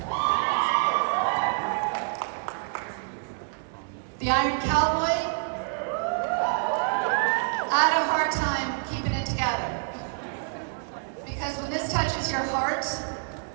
The Iron Cowboy, I had a hard time keeping it together. Because when this touches your heart,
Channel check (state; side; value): silent; left; digital silence